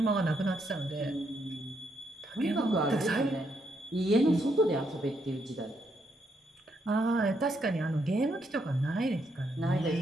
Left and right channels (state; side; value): normal; both; correlation 0.77